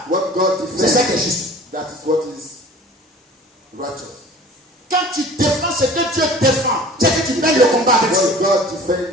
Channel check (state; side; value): normal; both; correlation 0.44